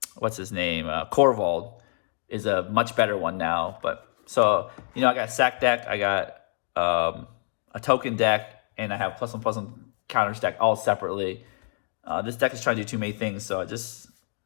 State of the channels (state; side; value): silent; right; 61 dB below the other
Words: what's his name? Corvald is a much better one now. But so I got a sack deck, I got a token deck, and I have +1/+1 counters deck all separately. This deck is trying to do too many things, so it's